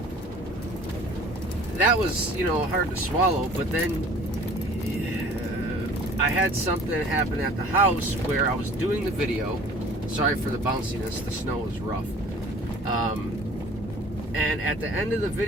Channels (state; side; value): normal; both; correlation 0.48